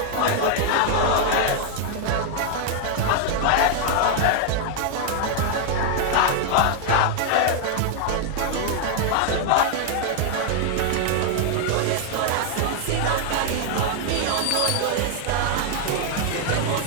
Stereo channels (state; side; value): different; both; correlation 0.00